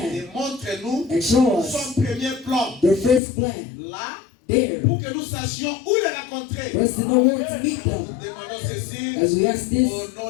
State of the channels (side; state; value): right; drops out; at 3.2 s